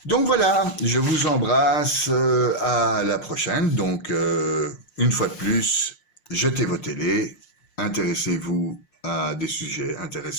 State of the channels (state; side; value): late; right; 5.6 ms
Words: Donc voilà, je vous embrasse, à la prochaine. Donc, une fois de plus, jetez vos télés, intéressez-vous à des sujets